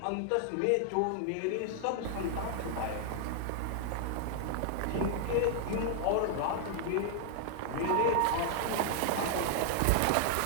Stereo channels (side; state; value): both; different; correlation 0.00